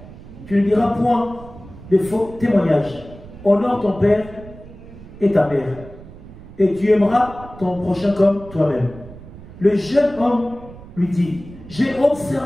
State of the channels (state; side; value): noise; right; rumble, 17 dB below the sound